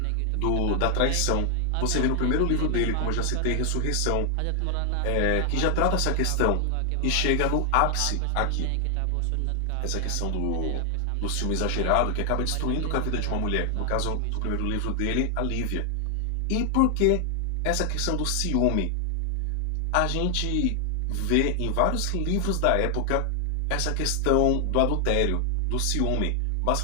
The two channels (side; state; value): both; different; correlation 0.00